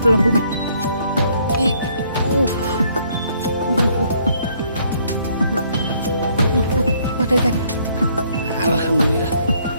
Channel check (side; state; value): both; inverted; correlation -0.66